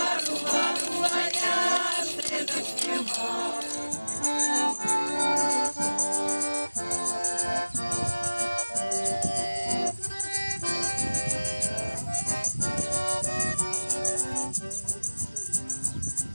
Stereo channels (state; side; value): inverted; both; correlation -1.00